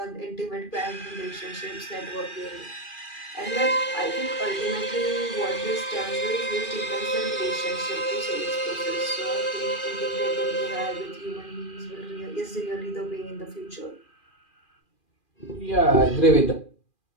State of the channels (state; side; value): late; right; 2.4 ms